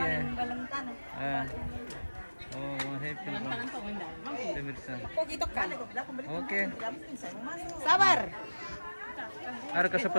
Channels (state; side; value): inverted; both; correlation -1.00